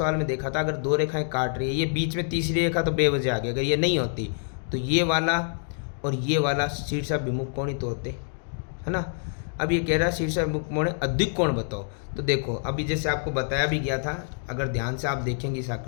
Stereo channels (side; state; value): right; silent; digital silence